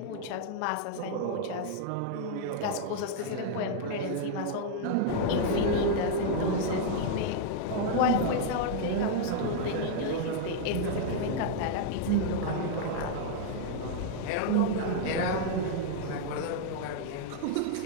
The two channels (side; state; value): both; different; correlation -0.01